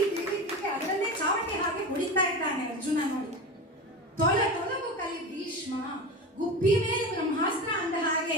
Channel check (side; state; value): both; normal; correlation 0.26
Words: ಅದರಲ್ಲೇ ಚಾವಟಿ ಹಾಗೆ ಹೊಡಿತಾ ಇದ್ದಾನೆ ಅರ್ಜುನ ನೋಡಿ. ತೊಲಗು ಕಲಿ ಭೀಷ್ಮ, ಗುಬ್ಬಿ ಮೇಲೆ ಬ್ರಹ್ಮಾಸ್ತ್ರ ಅಂದ ಹಾಗೆ